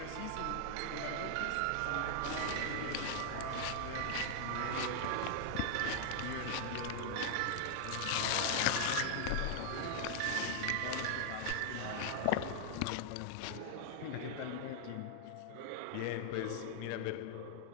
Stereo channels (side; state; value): both; different; correlation 0.00